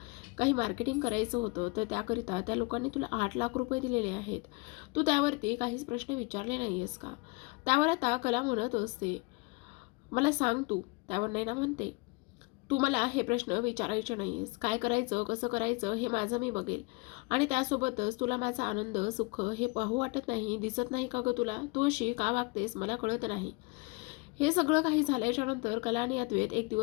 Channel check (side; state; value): right; quieter; 27.2 dB